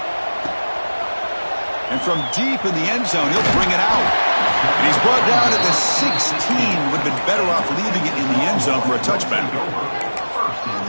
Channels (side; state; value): both; inverted; correlation -1.00